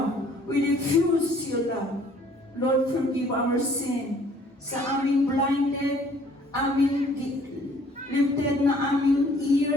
We refuse your love. Lord, forgive our sin. Sa aming blinded, aming lifted na aming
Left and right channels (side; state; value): both; normal; correlation 0.58